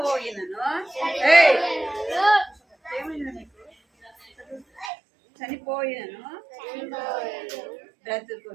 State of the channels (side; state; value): left; drops out; at 4.9 s